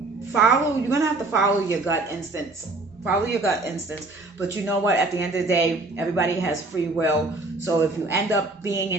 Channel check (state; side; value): quieter; left; 3.1 dB